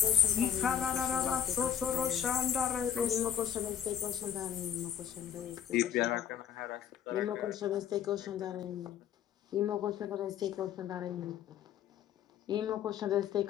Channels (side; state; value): right; quieter; 9.1 dB